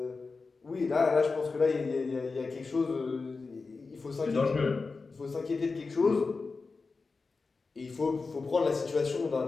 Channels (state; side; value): quieter; right; 4.2 dB